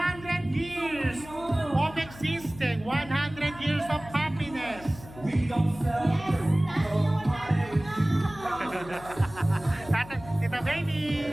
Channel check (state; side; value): noise; left; hum, 17 dB below the sound